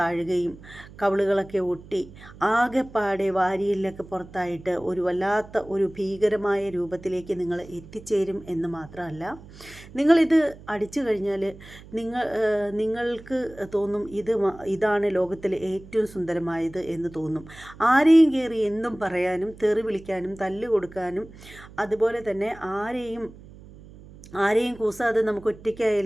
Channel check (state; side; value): noise; right; hum, 19 dB below the sound